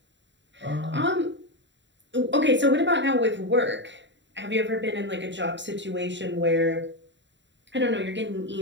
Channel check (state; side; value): late; left; 0.53 ms